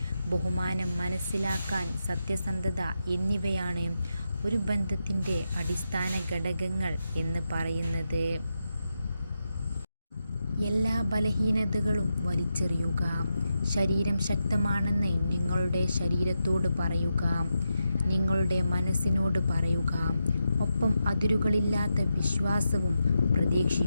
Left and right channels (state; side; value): inverted; both; correlation -0.87